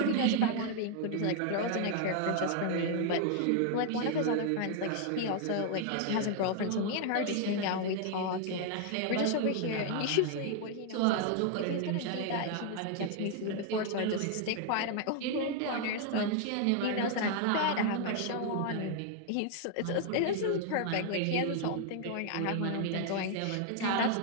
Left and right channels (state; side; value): different; both; correlation 0.00